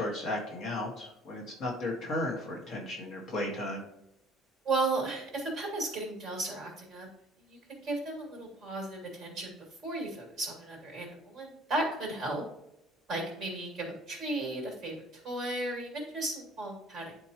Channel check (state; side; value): normal; both; correlation 0.53